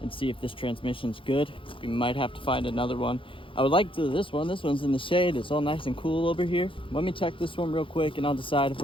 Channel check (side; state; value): right; late; 0.25 ms